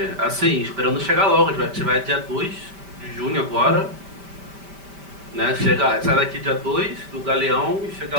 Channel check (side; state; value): left; late; 5.1 ms